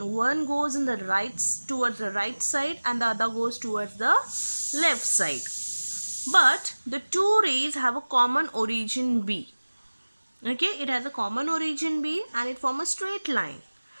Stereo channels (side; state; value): both; inverted; correlation -1.00